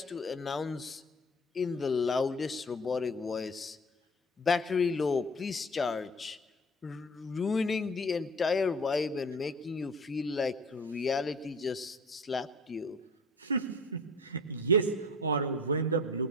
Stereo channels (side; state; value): both; normal; correlation 0.43